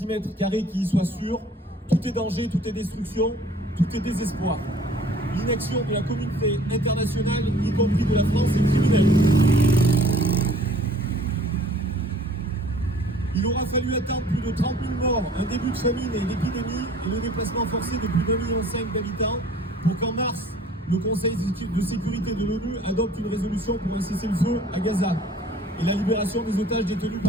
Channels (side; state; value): both; normal; correlation 0.52